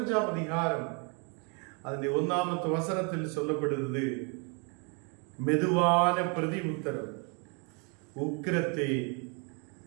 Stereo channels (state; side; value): quieter; left; 35.3 dB